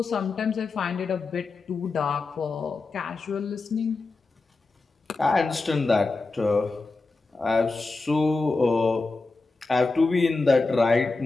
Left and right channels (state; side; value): quieter; right; 3.7 dB